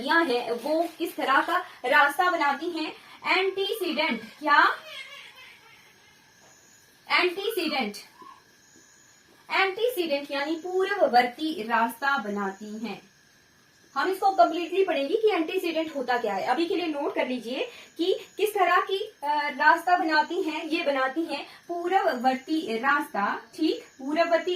हैं वो किस तरह का रास्ता बनाती हैं? एंटीसीडेंट, क्या? एंटीसीडेंट यानी पूर्ववर्ती रास्ता बनाती हैं। हम इसको कंप्लीटली पढ़ेंगे कि एंटीसीडेंट होता क्या है। अभी के लिए नोट कर लीजिए कि किस तरह की रास्ता बनाती हैं। ये बनाती हैं पूर्ववर्ती रास्ता, ठीक, पूर्ववर्ती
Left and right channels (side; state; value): both; identical; correlation 1.00